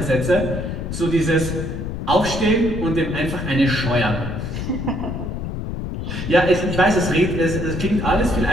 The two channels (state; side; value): noise; left; rumble, 5 dB below the sound